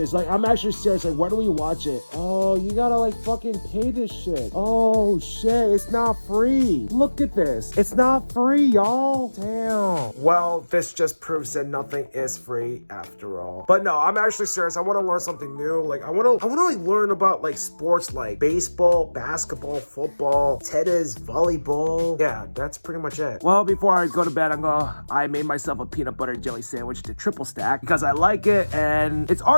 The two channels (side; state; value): both; inverted; correlation -1.00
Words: Like, I'm actually serious. Like, where do we watch it? Oh, you gotta like fucking pay this shit. Oh shit, it's not free. Look at this. It's not free, y'all. Damn. Well, this just proves that nothing is free after all. But no, I'm actually serious. I want to learn something new. Like, I want to like learn about like sports like baseball, basketball, football, tennis, volleyball. Yeah, that's pretty much it. Well, before I go to bed, I made myself a peanut butter jelly sandwich to triple stack because I like it, and it's